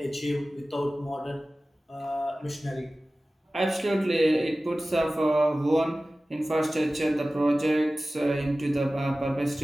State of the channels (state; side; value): normal; both; correlation 0.96